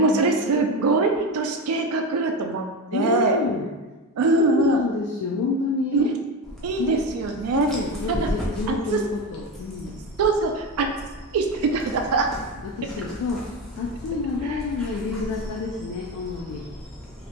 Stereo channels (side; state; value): both; normal; correlation 0.19